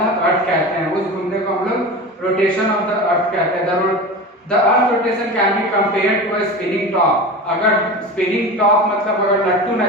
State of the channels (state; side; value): normal; both; correlation 0.29